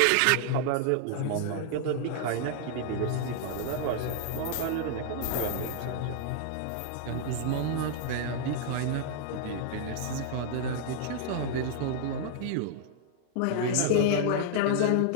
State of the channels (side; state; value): both; different; correlation -0.01